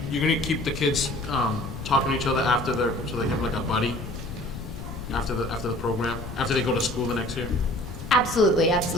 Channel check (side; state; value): left; noise; rumble, 10 dB below the sound